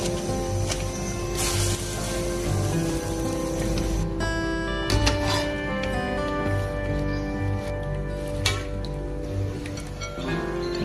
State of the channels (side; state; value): both; identical; correlation 1.00